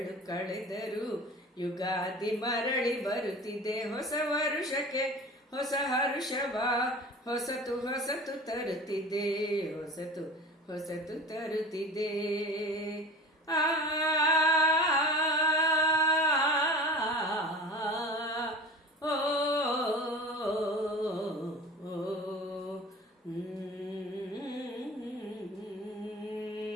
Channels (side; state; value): both; normal; correlation 0.37